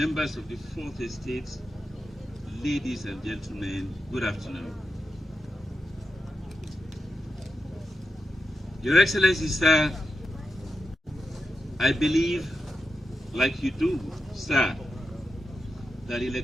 of the Fourth Estate, ladies and gentlemen, good afternoon. Your Excellency, sir, I believe, like you do, sir, that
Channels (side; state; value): both; normal; correlation 0.88